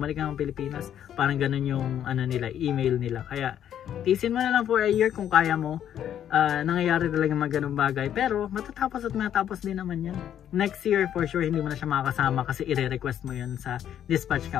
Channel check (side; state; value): right; quieter; 10.2 dB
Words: ka ng Pilipinas. Parang ganun yung nila, email nila. Kaya tiisin mo na lang for a year kung kaya mo. Nangyayari talaga mga ganung bagay, pero matatapos at matatapos din naman yan. Next year for sure hindi mo na siya makakasama kasi i-request mo yun sa dispatch